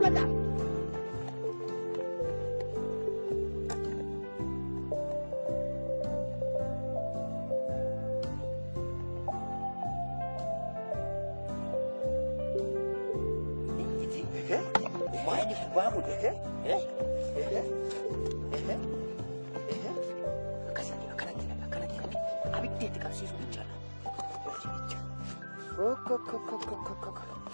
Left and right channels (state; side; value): inverted; both; correlation -1.00